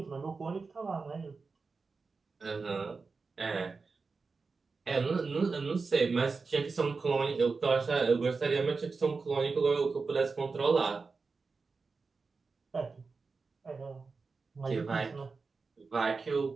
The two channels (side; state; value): left; quieter; 4.4 dB